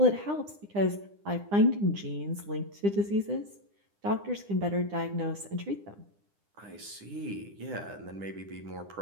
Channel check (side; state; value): left; late; 9.9 ms